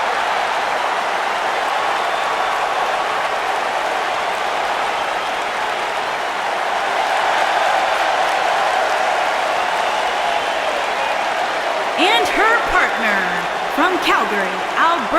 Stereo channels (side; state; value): both; identical; correlation 1.00